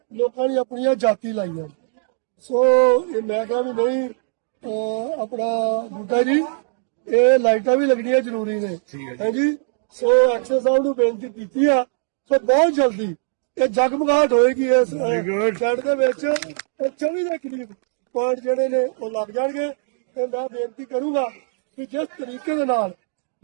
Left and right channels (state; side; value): silent; left; digital silence